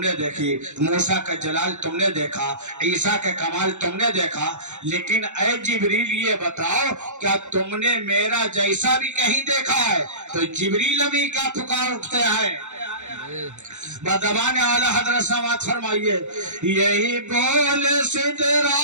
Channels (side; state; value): left; late; 0.84 ms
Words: देखी, मूसा का जलाल तुमने देखा, ईसा के कमाल तुमने देखा। लेकिन ऐ जिब्रील ये बताओ क्या तुमने मेरा जैसा भी कहीं देखा है? तो जिब्रील अभी क्या पुकार उठते हैं बदबान आला हजरत समात फरमाइए यही बोल सिदरा